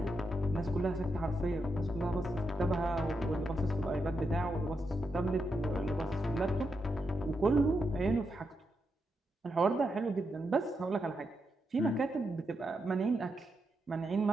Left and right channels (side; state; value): both; normal; correlation 0.84